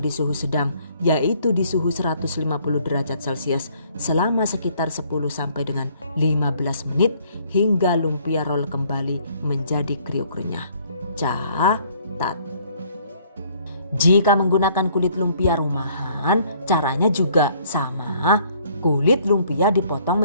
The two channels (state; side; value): inverted; both; correlation -0.61